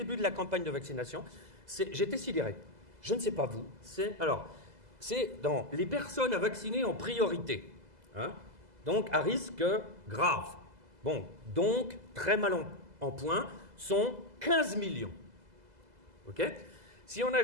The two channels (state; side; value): late; left; 2.0 ms